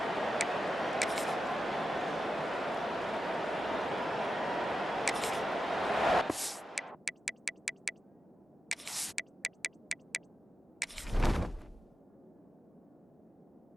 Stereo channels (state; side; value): normal; both; correlation 0.91